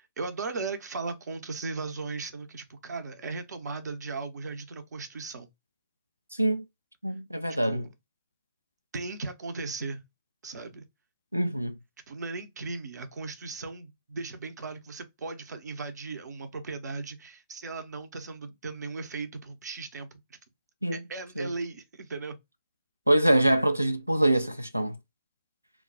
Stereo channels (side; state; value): both; inverted; correlation -0.87